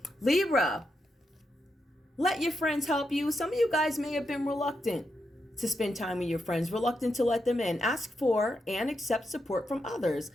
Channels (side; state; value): both; normal; correlation 0.84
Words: Libra, let your friends help you. Some of you guys may have been reluctant to spend time with your friends, reluctant to let them in. Ask for and accept support from others.